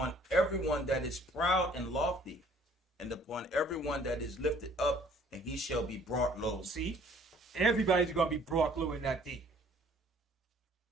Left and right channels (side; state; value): both; normal; correlation 0.57